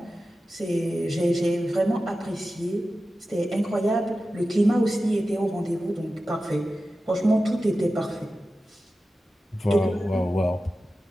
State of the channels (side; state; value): both; normal; correlation 0.94